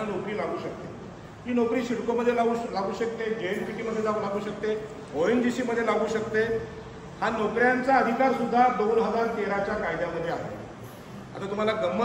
नोकरी लागू शकते. ती नोकरी सिडकोमध्ये लागू शकते, JNPT लागू शकते, ONGC मध्ये लागू शकते. हा नोकऱ्यांचा अधिकार सुद्धा 2013च्या कायद्यामध्ये आहे. आता तुम्हाला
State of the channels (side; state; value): both; identical; correlation 1.00